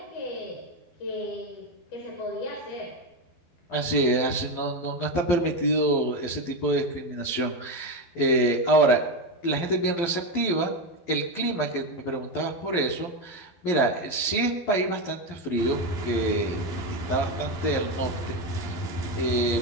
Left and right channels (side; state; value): right; late; 12 ms